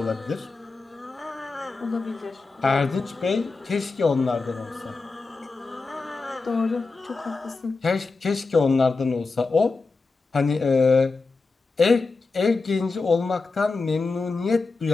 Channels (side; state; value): right; quieter; 4.0 dB